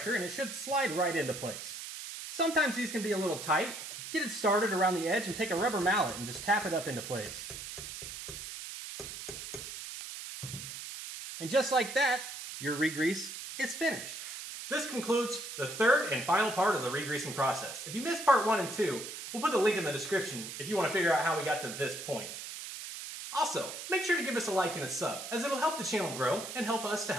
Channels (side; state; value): right; noise; hiss, 9 dB below the sound